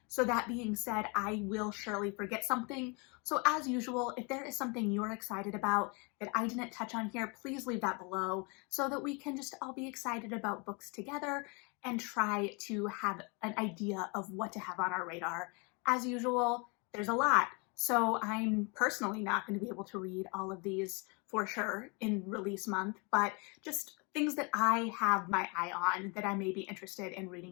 So that being said, I will surely forget something. So as usual, if there is something you're excited about that I didn't touch on here, please leave that below so that we can just all be excited about books together and try to have an idea of what to have on our radar. As usual, there's a lot. So I'm personally not going to be able to read all of these for sure in release month, but just things that I have my eye on that I may be interested in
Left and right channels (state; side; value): quieter; right; 31.5 dB